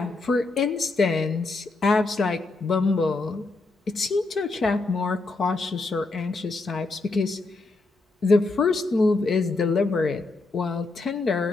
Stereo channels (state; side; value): quieter; right; 3.4 dB